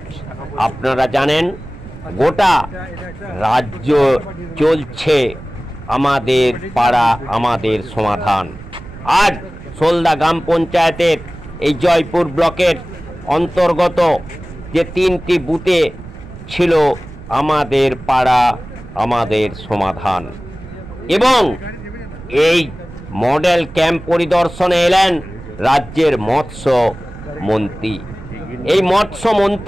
আপনারা জানেন গোটা রাজ্য চলছে আমাদের পাড়া আমাদের সমাধান। আজ সোলদা গ্রাম পঞ্চায়েতের এই জয়পুর ব্লকের অন্তর্গত যে 3টি বুথে ছিল আমাদের পাড়া আমাদের সমাধান, এবং এই মডেল ক্যাম্প পরিদর্শনে এলেন রাজ্যের মৎস্য মন্ত্রী। এই মৎস্য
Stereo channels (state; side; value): noise; right; rumble, 16 dB below the sound